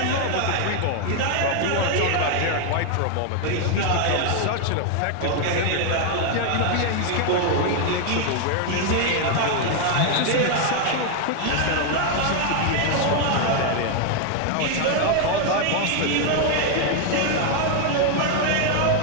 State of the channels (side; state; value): both; different; correlation 0.00